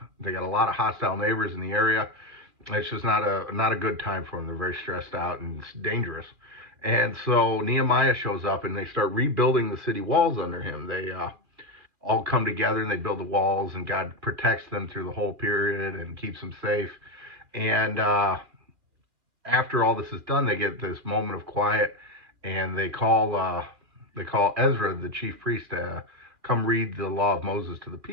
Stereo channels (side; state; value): left; late; 2.4 ms